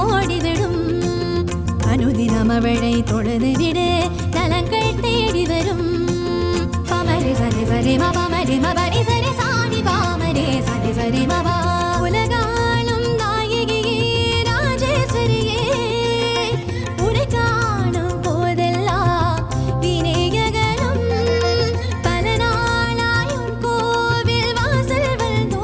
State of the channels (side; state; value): both; identical; correlation 1.00